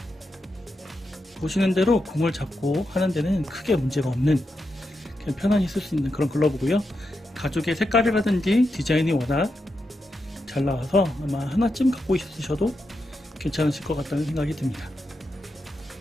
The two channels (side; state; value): both; normal; correlation 0.86